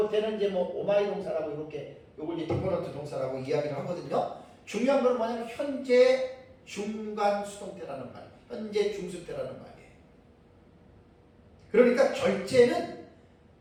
이제 뭐 오마이 동사라고 이렇게 요걸 이제 디포런트 동사라고 이야기를 하거든요. 중요한 건 뭐냐면 현재 중간 수동태라는 말, 현재 중수태라는 말이에요. 그러니까 절제는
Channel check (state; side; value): identical; both; correlation 1.00